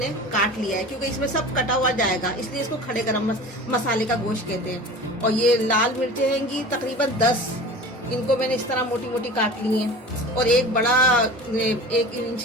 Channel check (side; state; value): both; normal; correlation 0.37